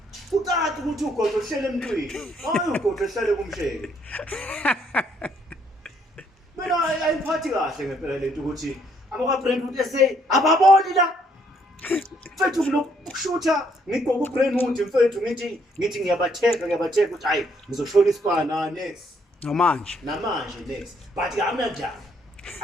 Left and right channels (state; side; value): normal; both; correlation 0.69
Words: ucaca ukuthi ugodo uhlele emntwini hayi ugodo ehlale kumsheke mina ayiphathi kahle ngempela lento ukuthi abaka-Brentwood SA ababoni la mfethu kulokushutha ngigqoka uBrentwood mfethu ngithi ngiyabatheka ukuthi hayi ngizoshona isibana next namanje next but